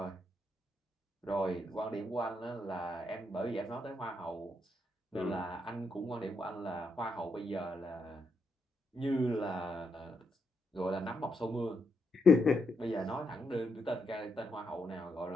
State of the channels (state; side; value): normal; both; correlation 0.81